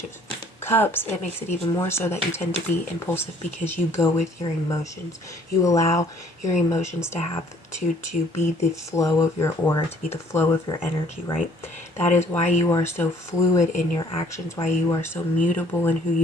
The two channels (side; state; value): both; normal; correlation 0.59